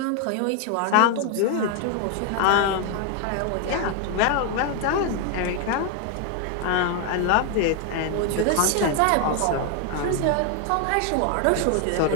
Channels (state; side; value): different; both; correlation 0.00